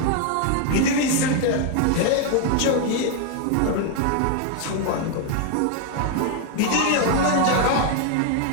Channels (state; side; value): different; both; correlation 0.00